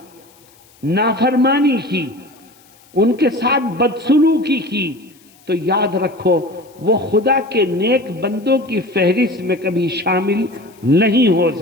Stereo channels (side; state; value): left; noise; hiss, 29 dB below the sound